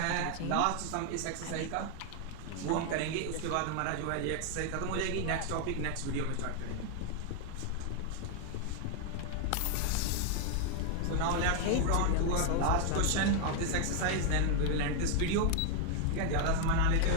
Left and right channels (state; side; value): different; both; correlation 0.00